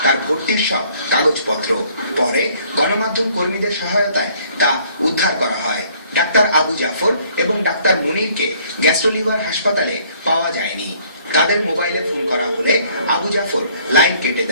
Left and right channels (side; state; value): both; inverted; correlation -0.61